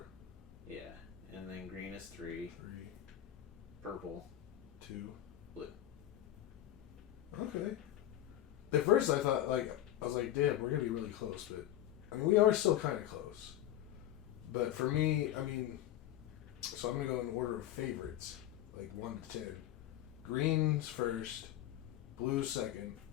yeah, and then green is 3, 3, purple, 2, blue. Okay. At first I thought, I was like, damn, we're going to be really close, but, we are still kind of close. But for me, so I'm going to go in order of favorites, 1 to 10. Green's first, blue's second,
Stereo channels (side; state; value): right; quieter; 12.8 dB